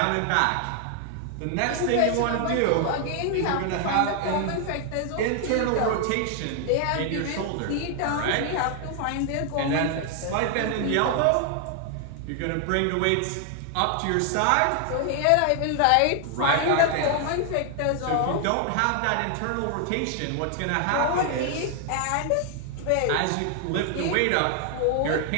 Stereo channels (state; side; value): different; both; correlation 0.00